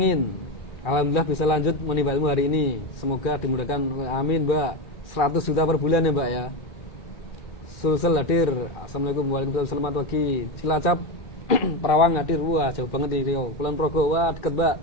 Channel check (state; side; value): late; right; 2.4 ms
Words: alhamdulillah bisa lanjut menimba ilmu hari ini. Semoga dimudahkan, amin Mbak. 100 juta per bulan ya Mbak ya. Sulsel hadir. Assalamualaikum, waalaikumsalam, selamat pagi. Cilacap, Perawang hadir. Wah, jauh banget nih Rio. Kulon Progo, wah deket Mbak.